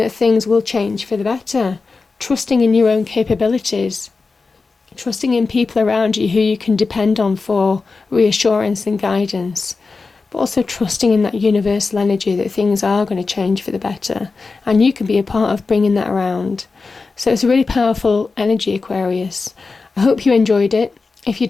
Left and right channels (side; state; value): right; quieter; 4.2 dB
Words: things will change for the better, trusting in your own capabilities, trusting in people around you who you can depend on for reassurance and guidance, but also trusting in that universal energy that things are going to change for the better, and you can be a part of bringing that around. So it's a really powerful energy, Aquarius. I hope you enjoyed it. If you